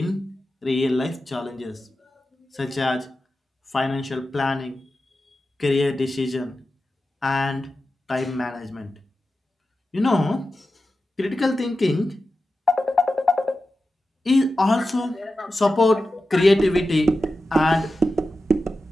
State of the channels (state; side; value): normal; both; correlation 0.92